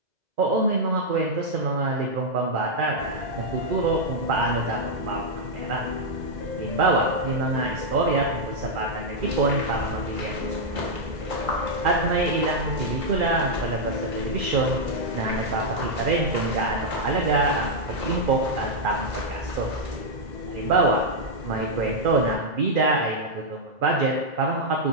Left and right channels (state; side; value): late; left; 2.0 ms